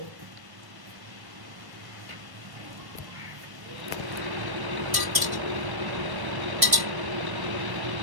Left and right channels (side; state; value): left; late; 1.1 ms